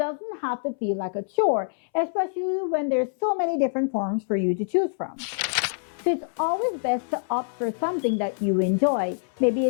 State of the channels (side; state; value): right; silent; 61 dB below the other